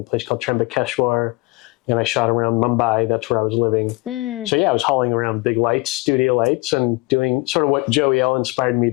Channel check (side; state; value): right; quieter; 24.1 dB